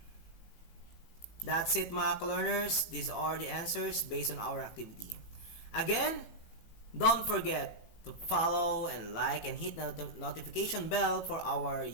That's it mga ka-learners. These are the answers based on our activity. Again, don't forget to follow and like and hit the notification bell for our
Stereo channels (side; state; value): right; late; 18 ms